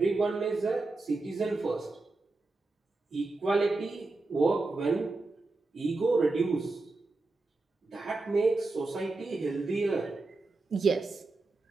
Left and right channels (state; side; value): quieter; left; 3.3 dB